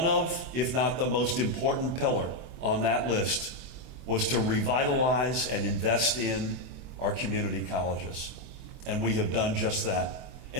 of, if not the most important pillar on that list, was to revitalize and invest in our community colleges. And we have done just that.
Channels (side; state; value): left; late; 24 ms